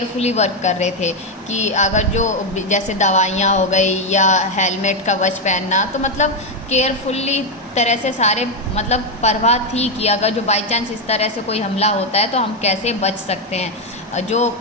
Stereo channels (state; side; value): normal; both; correlation 0.05